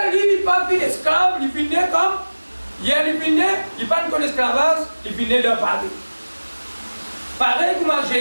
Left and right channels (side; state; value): both; inverted; correlation -1.00